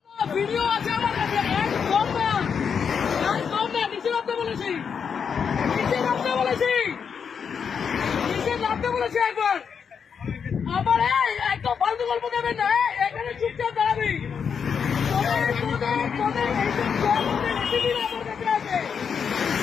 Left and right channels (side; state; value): right; quieter; 6.7 dB